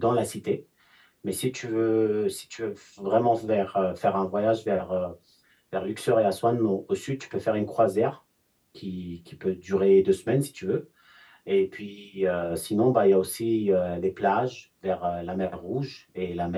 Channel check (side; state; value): both; identical; correlation 1.00